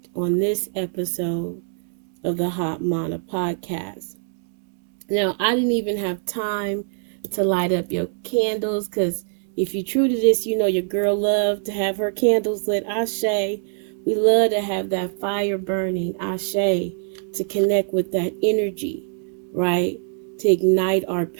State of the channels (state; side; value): silent; left; digital silence